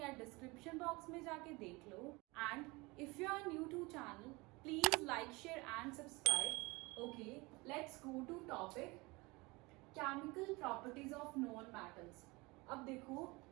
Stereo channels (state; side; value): quieter; left; 24.4 dB